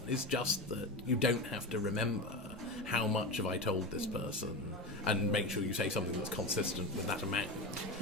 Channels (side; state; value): both; normal; correlation 0.22